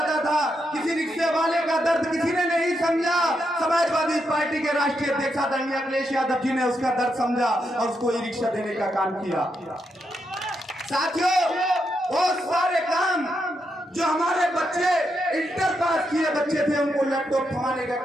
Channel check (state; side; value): normal; both; correlation 0.82